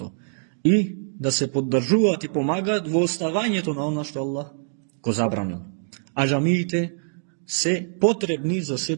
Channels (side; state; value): left; silent; digital silence